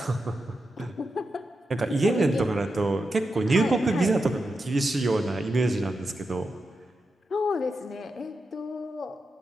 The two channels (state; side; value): normal; both; correlation 0.88